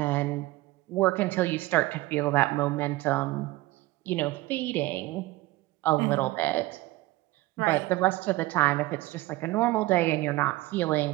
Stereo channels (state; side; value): quieter; left; 18.5 dB